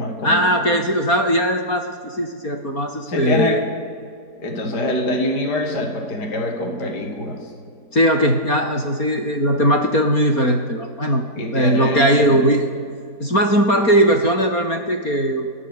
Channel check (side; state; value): right; late; 4.3 ms